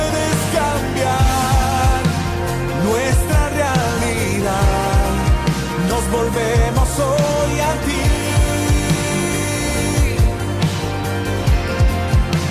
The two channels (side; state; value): both; identical; correlation 1.00